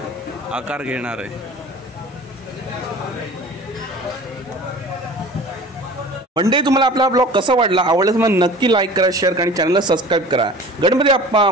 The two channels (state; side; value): normal; both; correlation 0.41